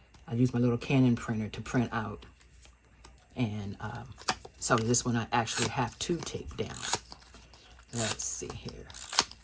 I use my little Canon printer to print out. And so this one I actually have to tape down. Let's see here.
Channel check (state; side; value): identical; both; correlation 1.00